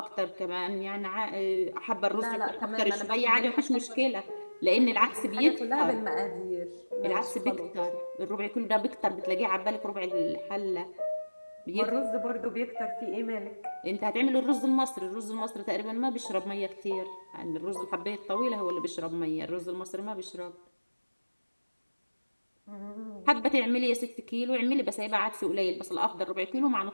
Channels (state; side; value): inverted; both; correlation -1.00